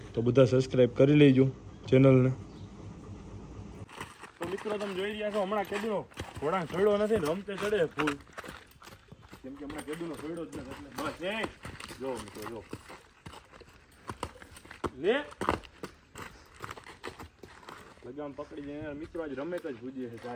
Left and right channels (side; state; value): both; identical; correlation 1.00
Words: તો બધા સબસ્ક્રાઈબ કરી લેજો ચેનલને. તો મિત્રો તમે જોઈ રહ્યા છો હમણાં કેદુનો ઘોડા છોડ્યો નથી ને રમતે ચડે ફૂલ, કેમ કે હમણાં કેદુનો છોડ્યો જ નથી. એટલે બસ જો મિત્રો જો લે લગામ પકડી જાય મિત્રો. આજ રમે જ ભૂજીએ છે